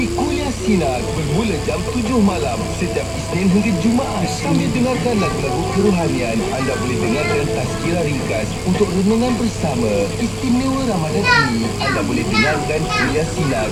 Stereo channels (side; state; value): both; identical; correlation 1.00